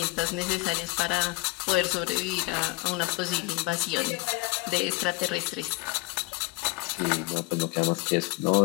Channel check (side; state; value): right; quieter; 24.2 dB